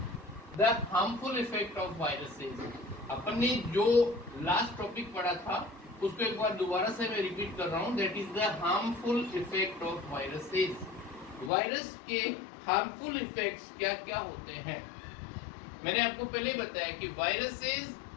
the harmful effect of viruses. अपन ने जो last topic पढ़ा था उसको एक बार दोबारा से मैं repeat कर रहा हूँ. That is the harmful effect of viruses. Virus के हार्मफुल इफेक्ट्स क्या क्या होते हैं. मैंने आपको पहले बताया कि viruses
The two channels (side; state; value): right; drops out; at 11.5 s